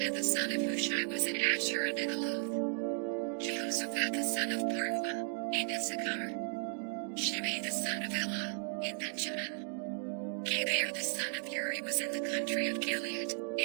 the son of Hushai was in Asher and in Aloth. Jehoshaphat the son of Parua, in Issachar. Shimei the son of Elah, in Benjamin. Geber the son of Uri was in the country of Gilead,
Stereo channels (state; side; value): silent; left; 54 dB below the other